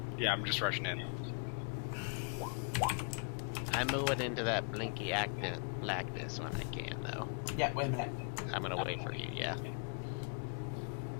Yeah, I'm just rushing in. I'm moving into that blinky blackness when I can, though. Yeah, wait a minute. I'm gonna wait for you, yeah.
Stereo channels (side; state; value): right; quieter; 38.2 dB